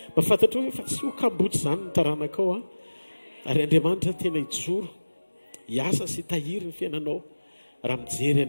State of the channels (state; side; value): inverted; both; correlation -1.00